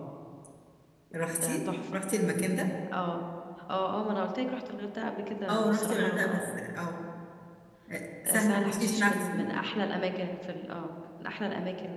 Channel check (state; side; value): identical; both; correlation 1.00